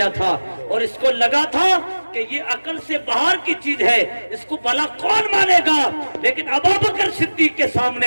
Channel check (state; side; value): inverted; both; correlation -1.00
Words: تھا اور اس کو لگا تھا کہ یہ عقل سے باہر کی چیز ہے، اس کو بھلا کون مانے گا، لیکن ابو بکر صدیق کے